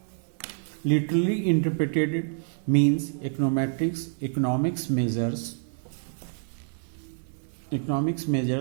literally interpreted means econometrics. Economics measures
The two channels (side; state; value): left; silent; digital silence